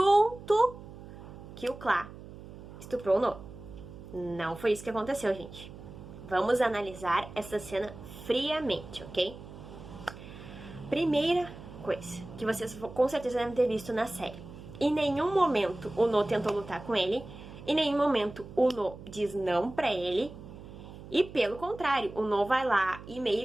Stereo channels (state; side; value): noise; right; hum, 15 dB below the sound